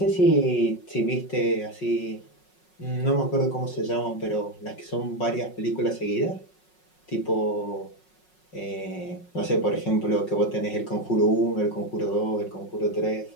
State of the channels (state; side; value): late; right; 5.5 ms